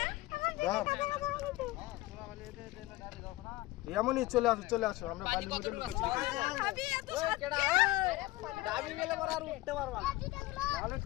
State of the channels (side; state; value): right; quieter; 18.9 dB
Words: এমনই চলে আসো চলে আসো, আমরা বালির মধ্যে